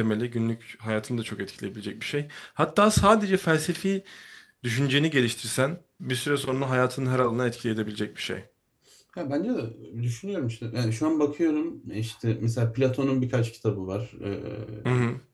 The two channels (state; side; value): identical; both; correlation 1.00